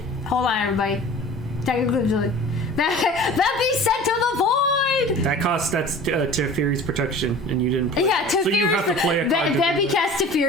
hold on, everybody. Technically, that be sent to the void. That's Teferi's protection, and you didn't play. Yeah, So you have to play a card. to do That be that. cast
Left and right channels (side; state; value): both; normal; correlation 0.41